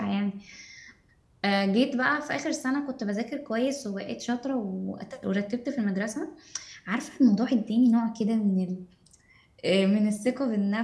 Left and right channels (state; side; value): identical; both; correlation 1.00